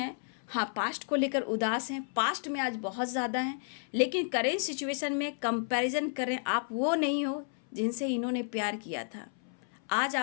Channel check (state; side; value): silent; right; 57 dB below the other